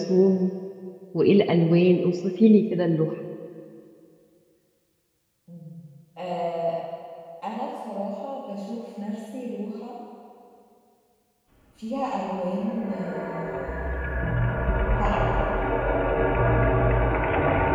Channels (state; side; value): identical; both; correlation 1.00